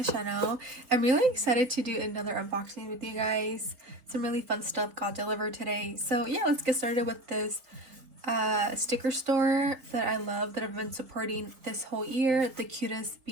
channel. I'm really excited to do another unboxing with you guys. Some really fun stuff got delivered today. So yeah, let's get started with this sticker store that I love, that I've been supporting this whole year. The cutest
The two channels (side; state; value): left; late; 3.8 ms